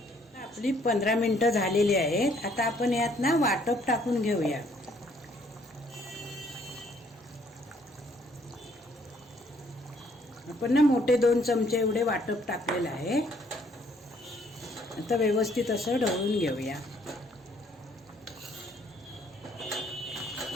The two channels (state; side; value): normal; both; correlation 0.65